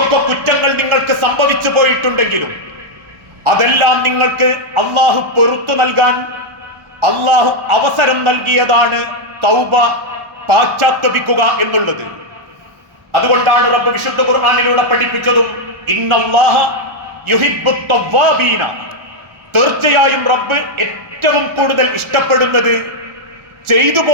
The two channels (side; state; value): left; late; 1.1 ms